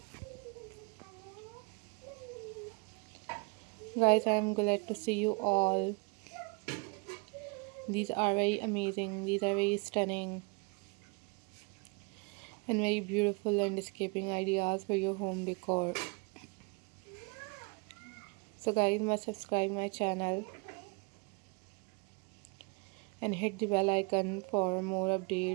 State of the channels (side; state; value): left; quieter; 30.5 dB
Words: Guys, I am glad to see you all. These are very amazing, these are very stunning and very beautiful landscaping ideas for your home decor. So guys, must subscribe my channel and hit the bell icon for more